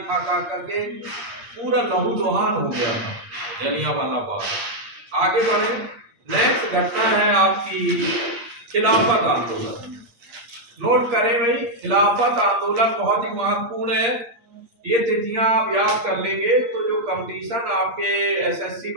खा खा करके, पूरा लहूलुहान हो गया था जलियांवाला बाग। आगे बढ़े, नेक्स्ट घटना है आपकी खिलाफत आंदोलन। नोट करें भाई, खिलाफत आंदोलन बहुत ही महत्वपूर्ण है। ये तिथियां आप याद कर लेंगे तो जो कंपटीशन आपके एसएससी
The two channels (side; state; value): left; late; 8.5 ms